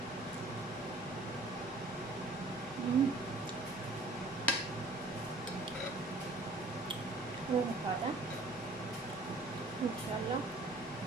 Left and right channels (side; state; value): left; quieter; 3.0 dB